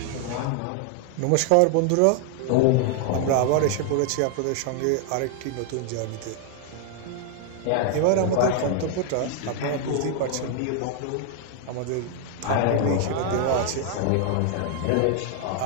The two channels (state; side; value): different; both; correlation 0.00